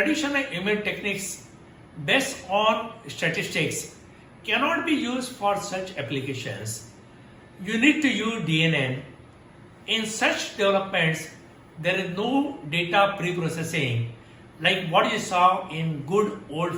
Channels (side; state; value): both; identical; correlation 1.00